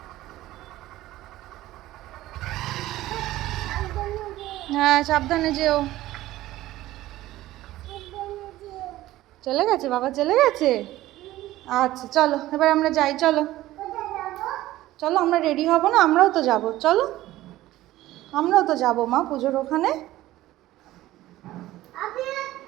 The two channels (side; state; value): left; quieter; 15.8 dB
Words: হ্যাঁ সাবধানে যেও। চলে গেছে বাবা, চলে গেছে। আচ্ছা চলো এবার আমরা যাই, চলো চলো, আমরা রেডি হব না? আমরাও তো যাব, চলো আমরাও তো যাবো মা পুজোর ওখানে।